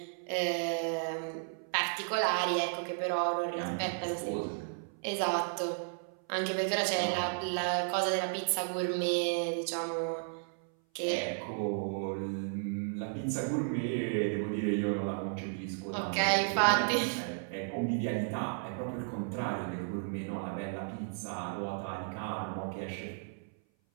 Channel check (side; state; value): left; silent; 55 dB below the other